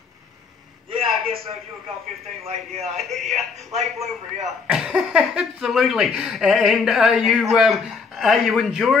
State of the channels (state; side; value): quieter; right; 5.1 dB